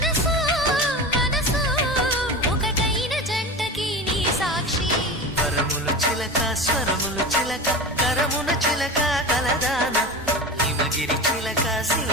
స్వరములు చిలక కరమున చిలక కలదాన హిమగిరి చిలక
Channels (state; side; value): normal; both; correlation 0.28